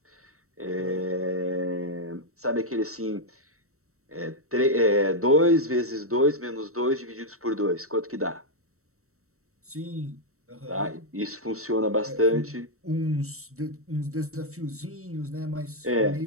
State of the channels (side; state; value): left; late; 0.64 ms